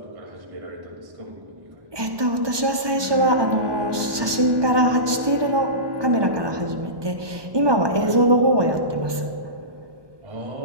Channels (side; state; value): left; late; 1.2 ms